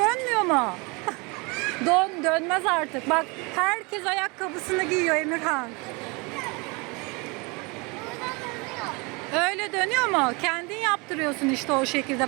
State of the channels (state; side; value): quieter; left; 28.3 dB